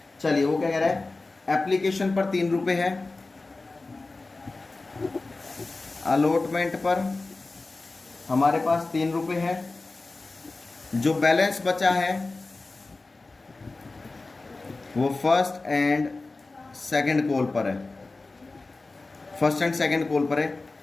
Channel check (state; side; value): quieter; right; 3.4 dB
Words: चलिए वो क्या कह रहा है, एप्लीकेशन पर 3 रुपये है, अलॉटमेंट पर हमारे पास 3 रुपये है, जो बैलेंस बचा है वो फर्स्ट एंड सेकंड कॉल पर है, फर्स्ट एंड सेकंड कॉल पर है।